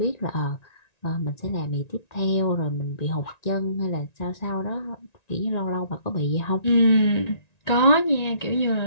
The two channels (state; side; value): late; right; 1.9 ms